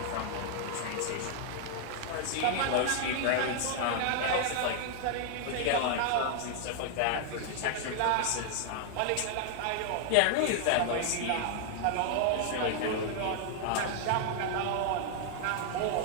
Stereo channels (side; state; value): both; different; correlation 0.00